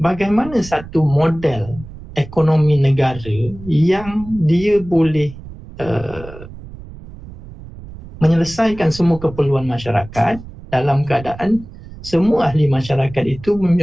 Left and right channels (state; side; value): noise; right; rumble, 16 dB below the sound